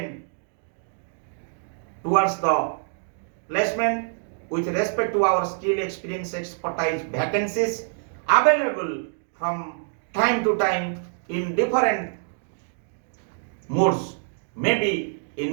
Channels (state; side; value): silent; left; digital silence